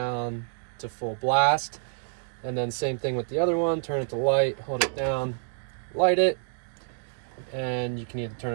to full blast. And then same thing with the other one, turn it to light, hold it down, light it, and you can either turn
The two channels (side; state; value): left; silent; 59 dB below the other